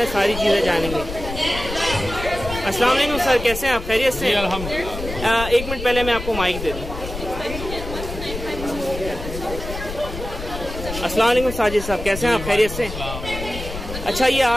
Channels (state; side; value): noise; left; rumble, 8 dB below the sound